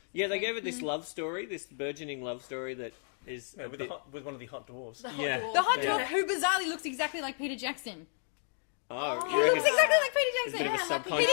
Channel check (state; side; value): silent; right; 56 dB below the other